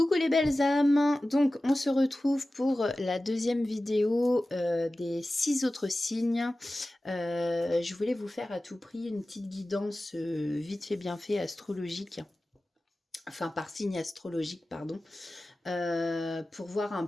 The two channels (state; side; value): normal; both; correlation 0.96